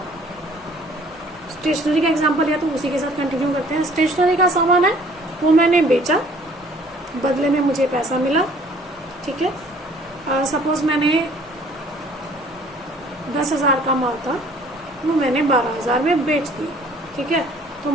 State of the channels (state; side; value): normal; both; correlation 0.55